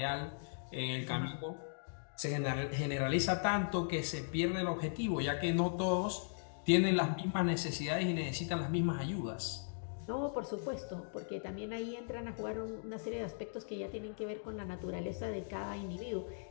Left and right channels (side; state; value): right; silent; digital silence